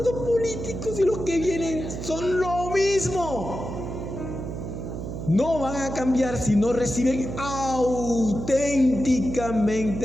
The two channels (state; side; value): noise; right; hum, 7 dB below the sound